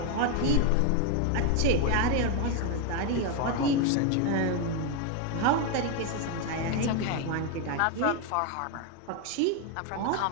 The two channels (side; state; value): both; different; correlation 0.01